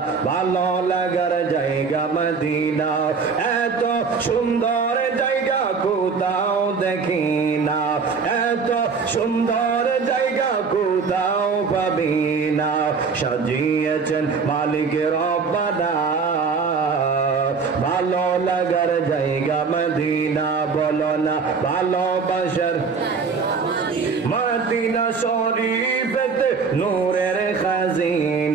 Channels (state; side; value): quieter; left; 5.2 dB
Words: ভালো লাগার জায়গা মদিনা। এত সুন্দর জায়গা কোথাও দেখি না, এত সুন্দর জায়গা কোথাও পাবি না। সাজিয়েছেন মালিকের রব্বানা, ভালো লাগার জায়গা মদিনা, বলো না ভালোবাসার মদিনা শরীফেতে নূরের